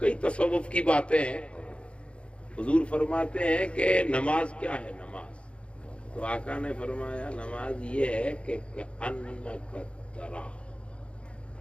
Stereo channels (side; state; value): right; late; 0.059 ms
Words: تصوف کی باتیں ہیں. حضور فرماتے ہیں کہ نماز کیا ہے. نماز تو آقا نے فرمایا نماز یہ ہے کہ انک ترا,